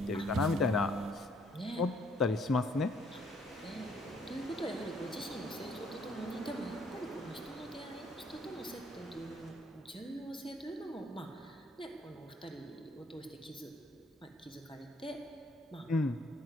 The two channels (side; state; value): both; normal; correlation 0.64